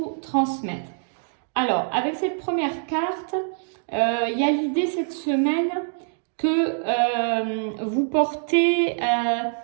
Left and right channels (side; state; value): left; silent; digital silence